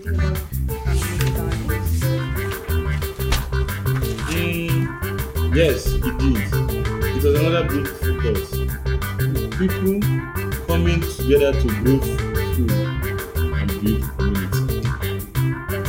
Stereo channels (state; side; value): identical; both; correlation 1.00